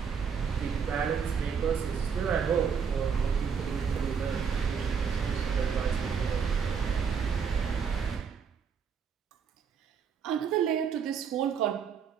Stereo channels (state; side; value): quieter; left; 6.6 dB